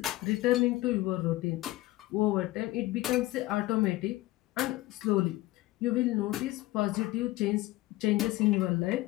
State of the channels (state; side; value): quieter; right; 18.3 dB